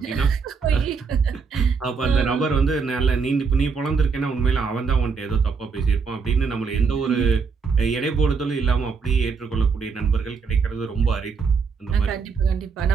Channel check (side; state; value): left; quieter; 5.3 dB